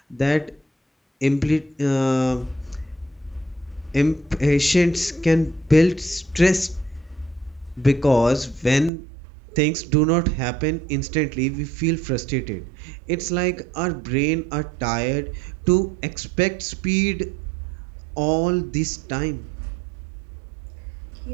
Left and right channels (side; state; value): left; drops out; at 8.9 s